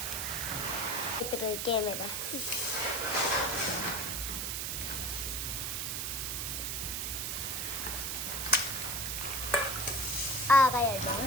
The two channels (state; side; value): noise; right; hiss, 1 dB below the sound